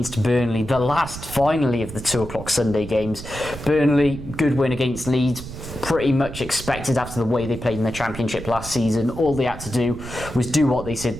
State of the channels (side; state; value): right; noise; rumble, 11 dB below the sound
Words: Burnley. The last, finally, of the 2 o'clock Sunday games. Burnley, good win against Leeds. Pretty much expected after the way they played in the Championship last season. All they had to do was do what they